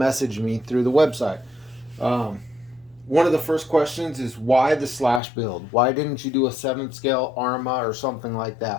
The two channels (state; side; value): drops out; right; at 5.2 s